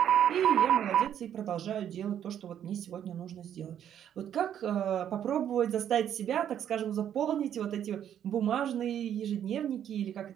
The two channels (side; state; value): left; quieter; 9.9 dB